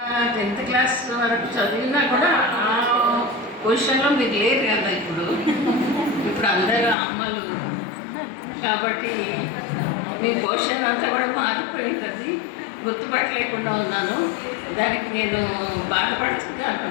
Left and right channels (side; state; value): right; drops out; at 7.0 s